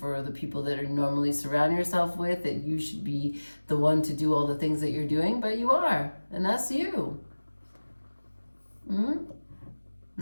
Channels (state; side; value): inverted; both; correlation -1.00